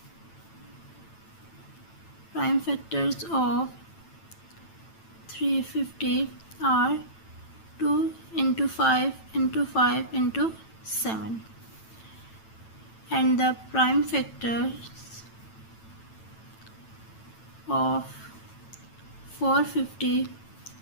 prime factors of 350 are 2 into 5 into 5 into 7, and the prime factors of 450,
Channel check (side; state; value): right; late; 9.0 ms